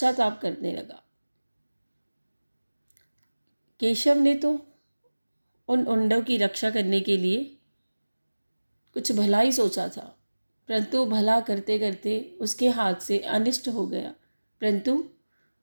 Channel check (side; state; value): both; inverted; correlation -1.00